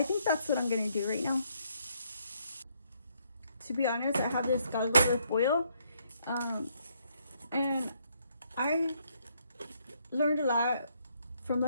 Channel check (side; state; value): both; inverted; correlation -0.72